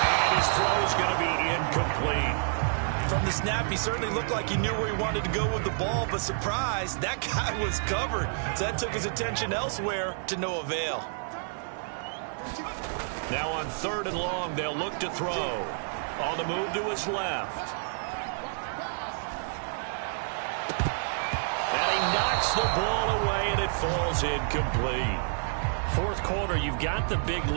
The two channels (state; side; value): silent; left; 59 dB below the other